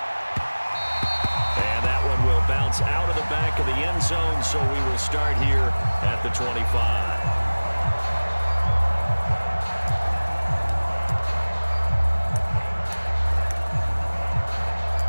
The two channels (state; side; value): inverted; both; correlation -1.00